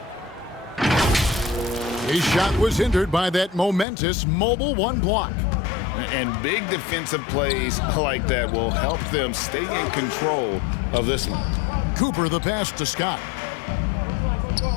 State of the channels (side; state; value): right; drops out; at 3.9 s